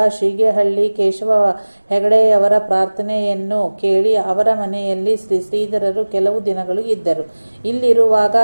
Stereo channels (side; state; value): both; inverted; correlation -1.00